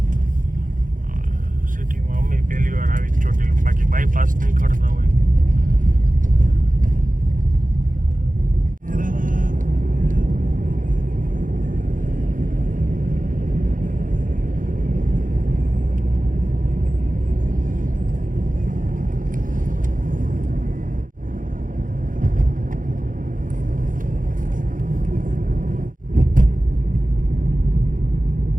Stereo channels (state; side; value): late; left; 0.39 ms